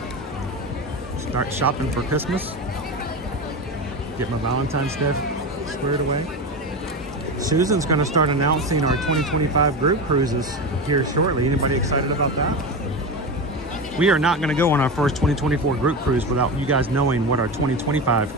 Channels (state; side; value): normal; both; correlation 0.21